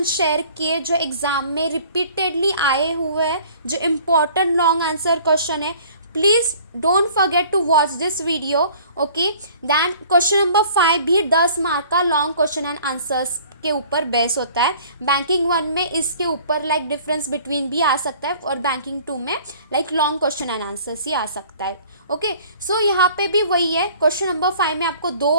शेयर किए जो एग्ज़ाम में रिपीटेडली आए हुए हैं, जो इम्पोर्टेंट लॉन्ग आंसर क्वेश्चन है. Please don't forget to watch this video. Okay, then question number 5 भी 10 मार्क का लॉन्ग क्वेश्चन एंड आंसर्स के ऊपर बेस होता है. बैंकिंग 1 में इसके ऊपर लाइक डिफरेंस बिटवीन भी आ सकता है, और बैंकिंग 2 में like long question and answers ही आ सकता है. ओके, सो यहाँ पे भी वही है. क्वेश्चन नंबर 5 में आपको 2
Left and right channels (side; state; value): both; inverted; correlation -0.51